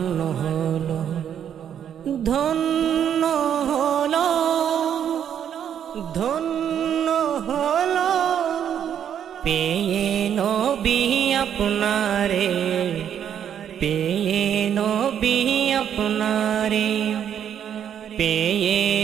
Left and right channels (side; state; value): left; quieter; 9.1 dB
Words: হলো, ধন্য হলো, ধন্য হলো পেয়ে নবী আপনারে, পেয়ে নবী আপনারে, পেয়ে